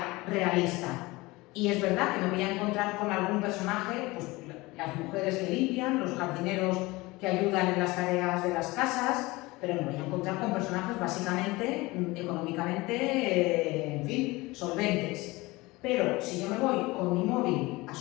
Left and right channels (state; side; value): quieter; right; 21.8 dB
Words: realista. Y es verdad que me voy a encontrar con algún personaje, pues las mujeres que limpian, los jardineros que ayudan en las tareas de las casas, pero me voy a encontrar con personajes básicamente, económicamente, en fin, solventes. Pero si yo me voy con mi móvil a